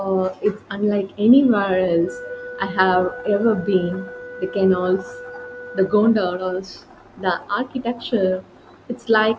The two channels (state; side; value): identical; both; correlation 1.00